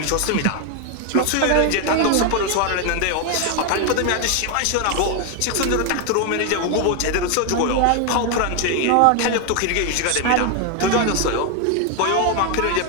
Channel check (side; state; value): both; different; correlation 0.01